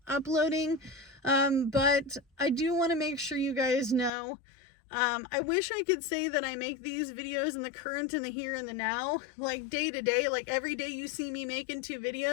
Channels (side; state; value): right; drops out; at 4.1 s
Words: uploading, but I do want to make sure you guys know. I wish I could say that I make these videos in the current and the here and the now, like day to day, like every day you see me making 2